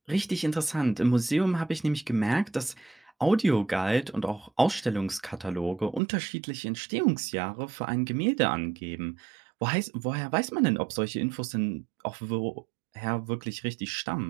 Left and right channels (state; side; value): drops out; left; at 6.0 s